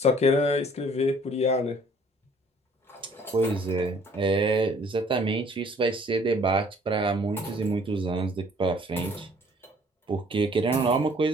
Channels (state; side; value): normal; both; correlation 0.57